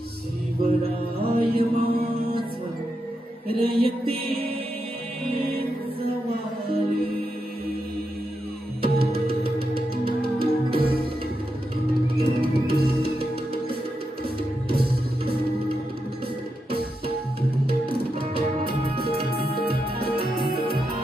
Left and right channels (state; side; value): normal; both; correlation 0.85